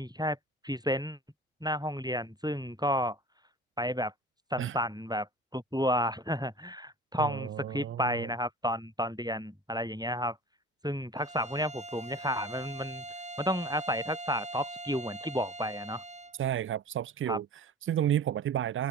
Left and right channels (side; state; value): both; normal; correlation 0.40